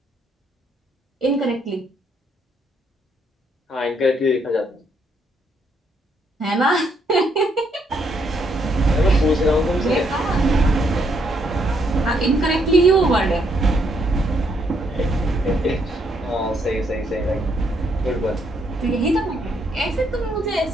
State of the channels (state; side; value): normal; both; correlation 0.73